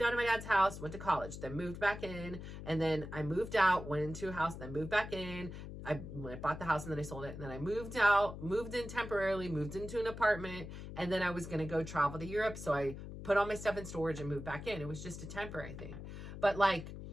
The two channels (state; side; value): noise; left; hum, 10 dB below the sound